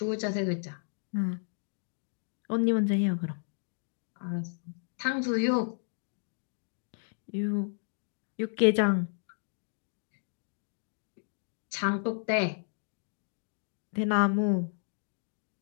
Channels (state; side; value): silent; right; digital silence